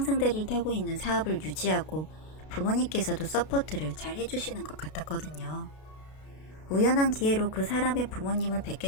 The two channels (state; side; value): late; right; 32 ms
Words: 타고 있는 사업을 유지하고 부모님께서도 서포트를 잘 해주시는 것 같았거든요. 우연한 기회로 그 사람의 부모님을